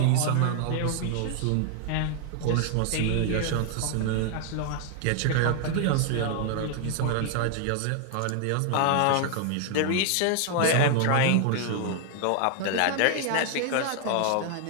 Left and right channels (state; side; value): different; both; correlation 0.00